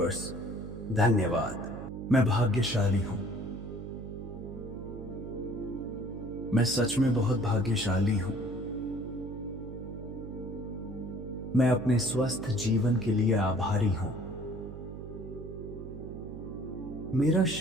धन्यवाद। मैं भाग्यशाली हूं। मैं सच में बहुत भाग्यशाली हूं। मैं अपने स्वस्थ जीवन के लिए आभारी हूं। मेरा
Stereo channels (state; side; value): noise; right; hum, 10 dB below the sound